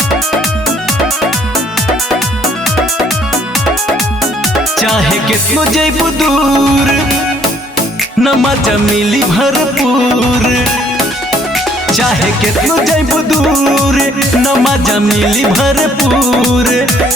चाहे कितनो जैबू दूर न मजा मिली भरपूर। चाहे कितनो जैबू दूर न मजा मिली भरपूर।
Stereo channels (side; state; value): both; normal; correlation 0.63